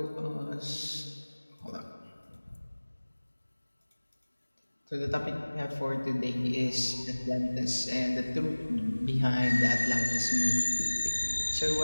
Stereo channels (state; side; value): inverted; both; correlation -1.00